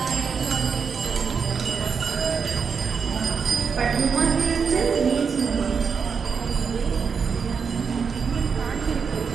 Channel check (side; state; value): left; quieter; 5.9 dB